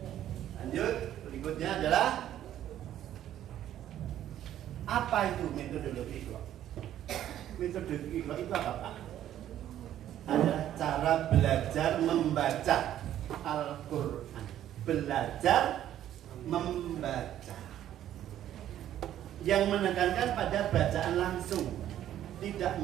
Lanjut, berikutnya adalah apa itu metodologi Iqra? Metodologi Iqra itu apa, Pak? Adalah cara belajar membaca Al-Quran. Belajar membaca. Yang menekankan pada bacaan langsung, tidak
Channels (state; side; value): quieter; left; 11.7 dB